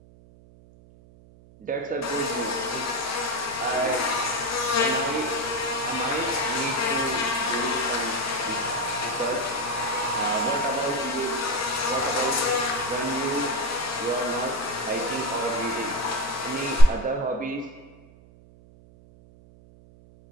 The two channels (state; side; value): noise; right; hum, 24 dB below the sound